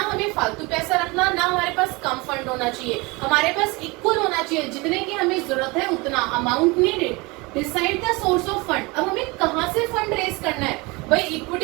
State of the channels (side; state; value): left; quieter; 25.3 dB